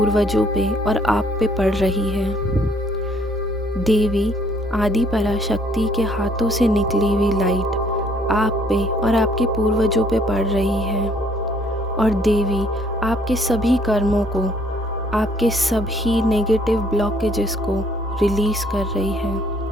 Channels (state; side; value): normal; both; correlation 0.63